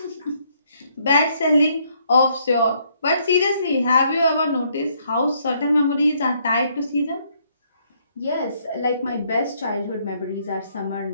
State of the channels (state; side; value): inverted; both; correlation -0.70